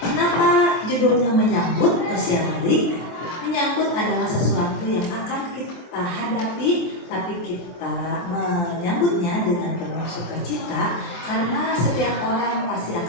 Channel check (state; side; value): late; right; 23 ms